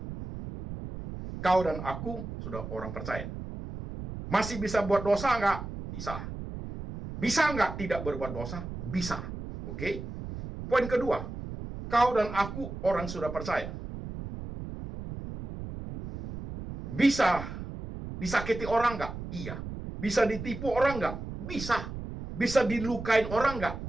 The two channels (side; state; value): right; noise; rumble, 9 dB below the sound